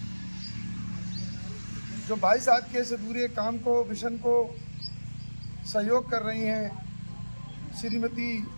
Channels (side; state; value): both; inverted; correlation -1.00